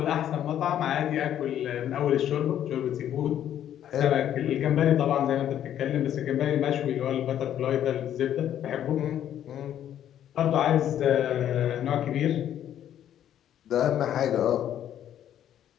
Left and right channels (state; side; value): quieter; right; 10.7 dB